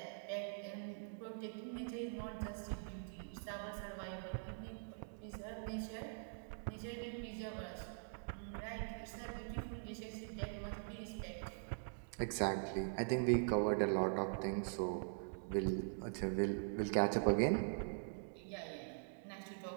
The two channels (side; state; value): left; silent; digital silence